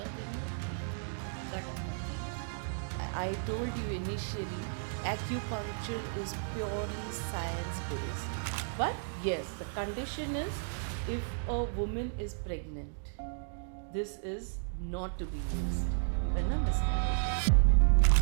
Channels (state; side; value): silent; left; digital silence